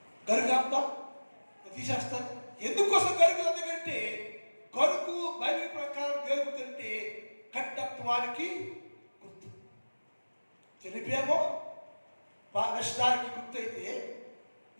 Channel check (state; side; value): inverted; both; correlation -1.00